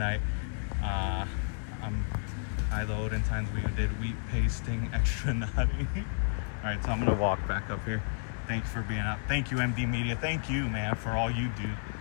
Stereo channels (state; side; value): silent; right; 56 dB below the other